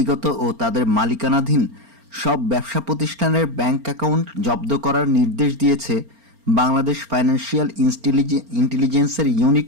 ও তাদের মালিকানাধীন সব ব্যবসা প্রতিষ্ঠানের ব্যাংক অ্যাকাউন্ট জব্দ করার নির্দেশ দিয়েছে বাংলাদেশ ফাইন্যান্সিয়াল ইন্টেলিজেন্সের ইউনিট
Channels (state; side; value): late; left; 4.4 ms